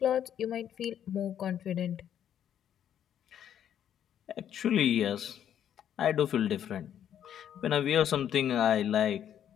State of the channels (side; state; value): right; quieter; 9.9 dB